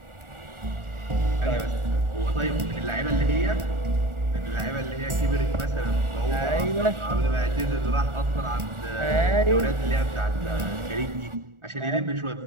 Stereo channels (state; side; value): late; left; 1.4 ms